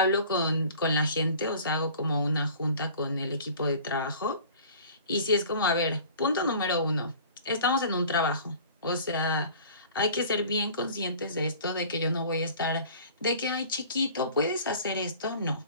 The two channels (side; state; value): both; inverted; correlation -0.45